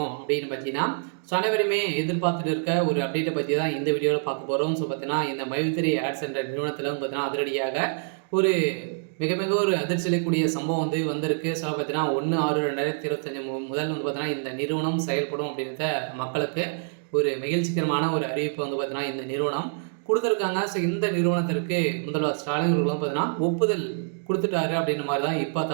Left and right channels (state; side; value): silent; left; digital silence